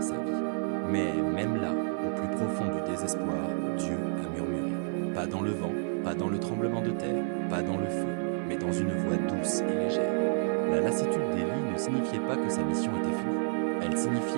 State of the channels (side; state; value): left; silent; 58 dB below the other